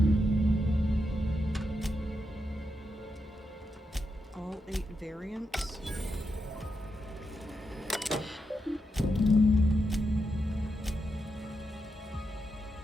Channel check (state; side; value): normal; both; correlation 0.85